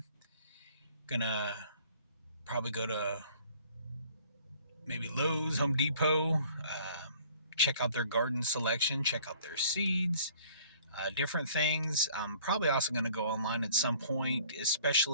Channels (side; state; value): both; inverted; correlation -0.54